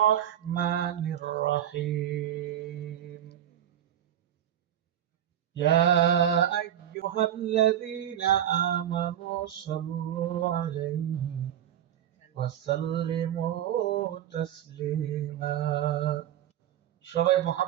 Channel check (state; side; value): quieter; left; 10.7 dB